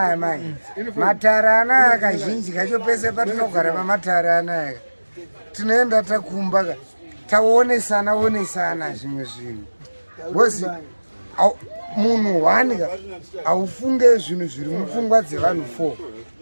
manje matara anaya kazhinji kacho pese patinogara pamatara anaya tinoenda takumba taonesana zvimwe zvinhu because munhu wanika aufunge zvinhu zviri mupfungwa dzevanhu 4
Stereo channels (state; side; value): inverted; both; correlation -1.00